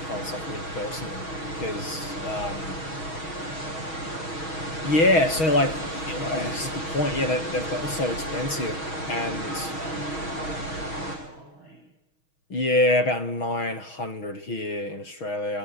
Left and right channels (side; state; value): right; late; 6.3 ms